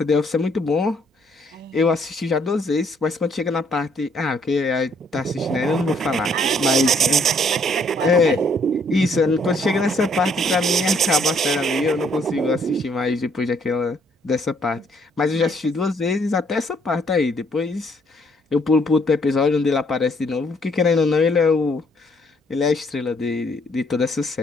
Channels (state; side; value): normal; both; correlation 0.66